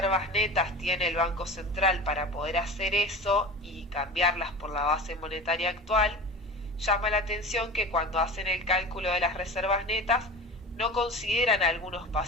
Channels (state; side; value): normal; both; correlation 0.34